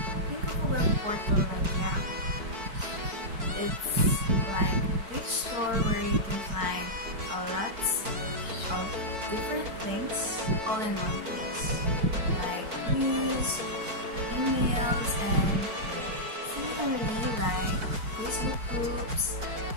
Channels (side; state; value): left; late; 4.5 ms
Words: Think of a web portal like Yahoo. It's like a big store where you can find a lot of different things all in one place, like news, emails, and similarly like Facebook groups,